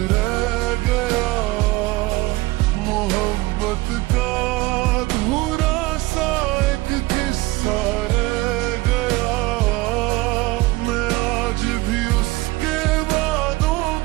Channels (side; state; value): left; quieter; 20.6 dB